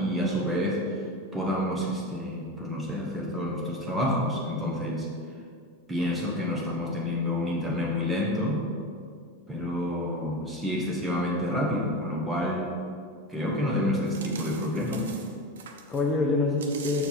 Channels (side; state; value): both; normal; correlation 0.25